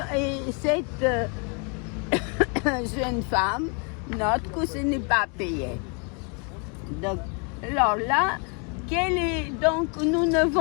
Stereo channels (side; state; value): right; quieter; 36.0 dB